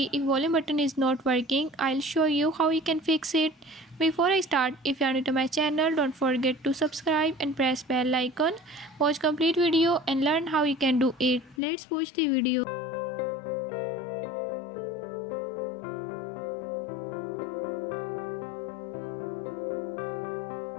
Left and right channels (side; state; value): right; drops out; at 11.6 s